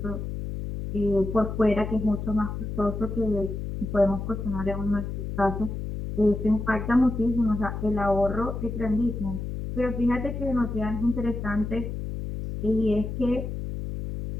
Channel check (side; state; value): left; noise; hum, 5 dB below the sound